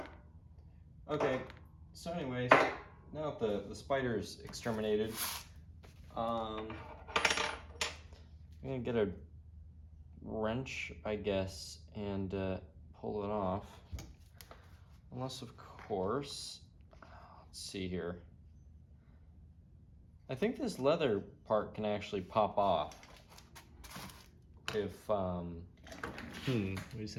Okay, so anyways, now that the spider's exterminated, I'm gonna get a wrench, I guess, and pull it off. Unless, of course, let's see here. I think this leather part can actually pop off. If, wait a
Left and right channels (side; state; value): both; identical; correlation 1.00